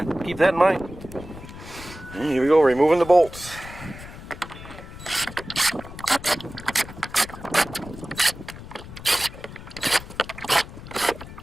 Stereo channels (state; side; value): noise; left; rumble, 14 dB below the sound